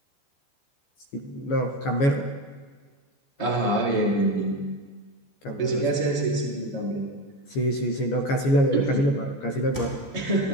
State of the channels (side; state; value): right; late; 14 ms